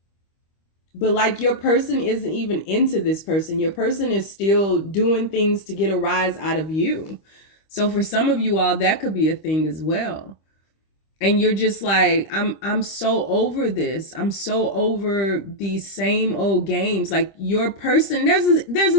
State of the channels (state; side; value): late; right; 25 ms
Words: but like your person isn't even into this person. Your person is still doing things to get a rise out of you. So for some of you all, that could be a thing as well. And you're just like, I'm so over this. I'm so over these same old games. Like your person, there's